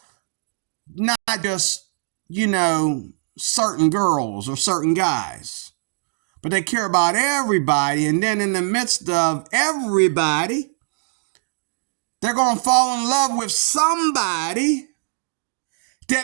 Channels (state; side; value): silent; left; digital silence